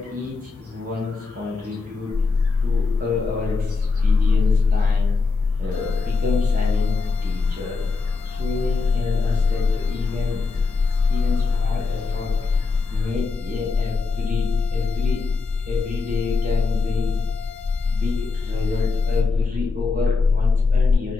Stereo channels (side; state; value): right; quieter; 4.2 dB